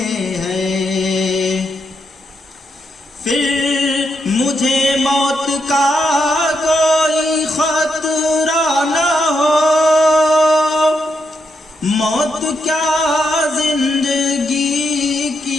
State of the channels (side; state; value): both; normal; correlation 0.81